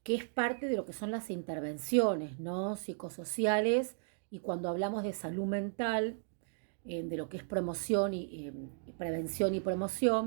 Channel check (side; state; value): left; silent; digital silence